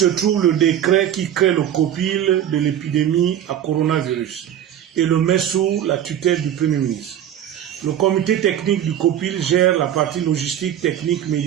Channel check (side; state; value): left; quieter; 10.4 dB